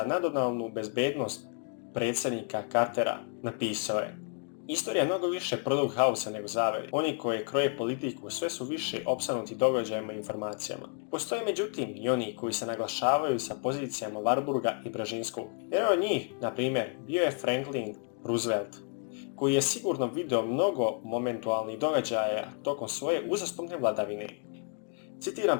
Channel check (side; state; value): right; quieter; 38.6 dB